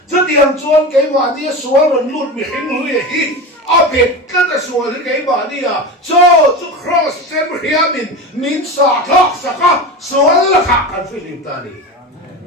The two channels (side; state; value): both; normal; correlation 0.26